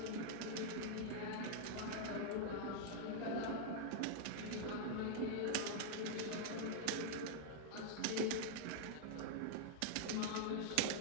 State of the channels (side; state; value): both; different; correlation -0.01